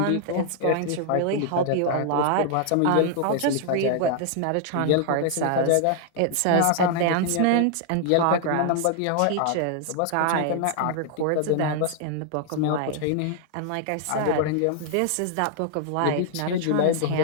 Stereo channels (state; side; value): different; both; correlation 0.00